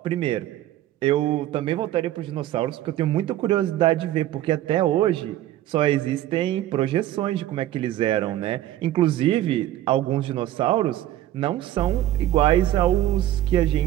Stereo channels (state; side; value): quieter; left; 13.5 dB